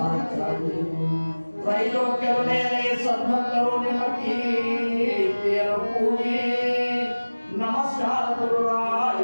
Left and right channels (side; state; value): both; inverted; correlation -1.00